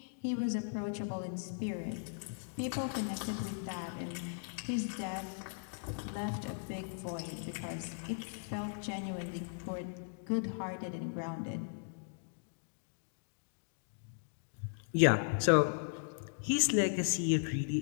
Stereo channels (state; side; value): silent; right; digital silence